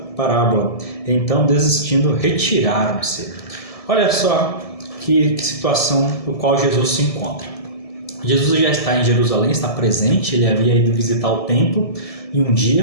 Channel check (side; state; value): right; late; 1.7 ms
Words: Então, desistindo, retiraram-se. Olha só que situação no qual Jesus se encontra. Jesus já está em Jerusalém, está presente, ele havia ido visitar o templo em um